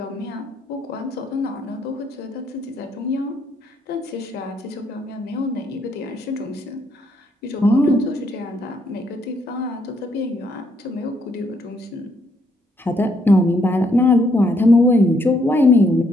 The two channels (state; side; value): normal; both; correlation 0.72